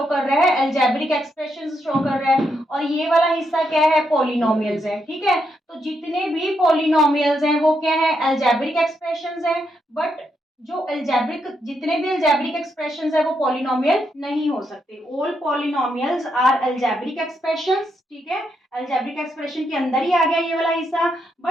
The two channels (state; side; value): normal; both; correlation 0.80